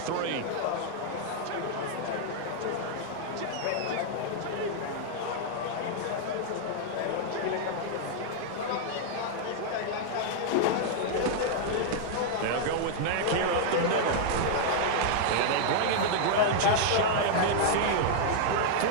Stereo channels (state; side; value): different; both; correlation -0.01